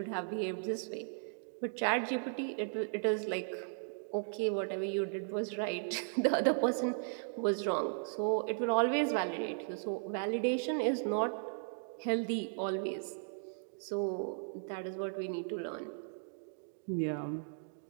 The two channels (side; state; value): left; silent; digital silence